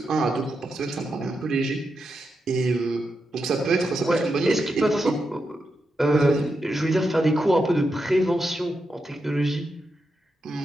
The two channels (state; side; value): normal; both; correlation 0.86